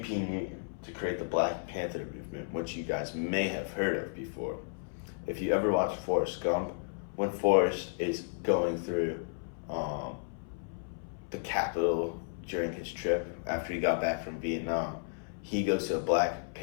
P. Newton to create the Black Panther movement, which you guys may have heard of before. If you ever watched Forrest Gump, when Forrest is going through the Capitol during his trip after he got back from Vietnam, he goes to a Black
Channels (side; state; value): right; silent; 56 dB below the other